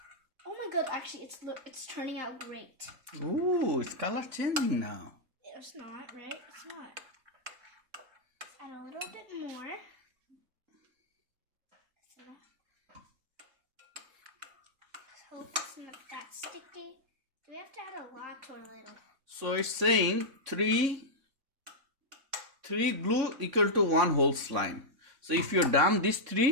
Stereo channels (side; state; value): left; late; 3.6 ms